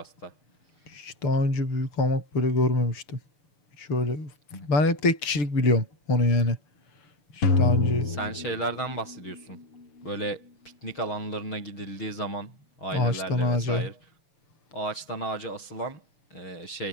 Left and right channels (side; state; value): right; late; 6.7 ms